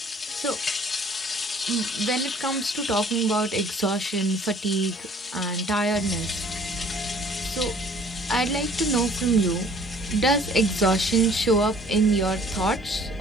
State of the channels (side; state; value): both; normal; correlation 0.54